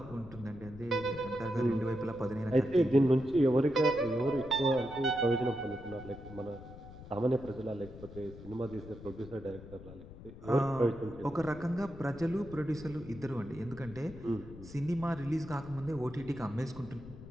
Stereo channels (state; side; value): noise; left; rumble, 15 dB below the sound